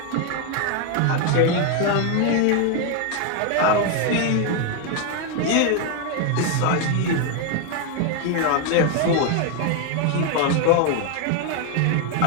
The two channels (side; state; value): both; different; correlation 0.01